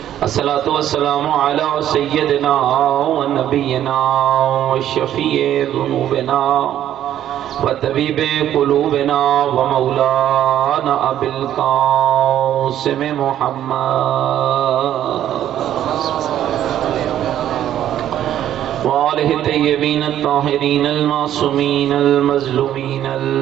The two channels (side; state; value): left; quieter; 11.4 dB